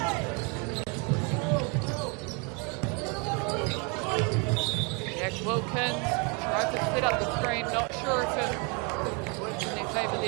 Jack Wilkins tried to set up the screen. Not sure if it works in their favour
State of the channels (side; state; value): left; quieter; 33.1 dB